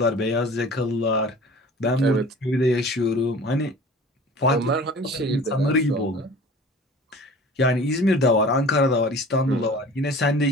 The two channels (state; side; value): normal; both; correlation 0.43